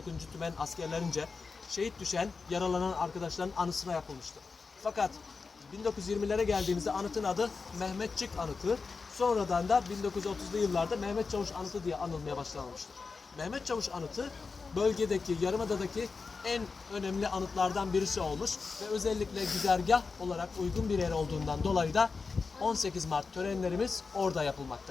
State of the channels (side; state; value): right; quieter; 4.6 dB